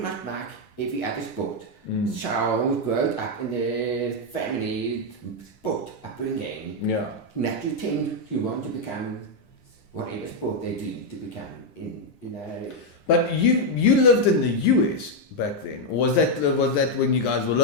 much like every other sport. So we grew up in the family sport upbringing. Yeah. Naturally tend to want to become whatever sport they do to become in, you know. But you lived in the US back then, or was that when you guys were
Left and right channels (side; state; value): right; late; 10 ms